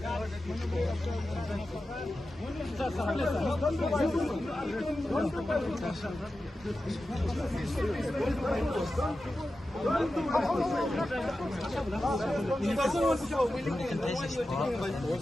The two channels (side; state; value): both; normal; correlation 0.92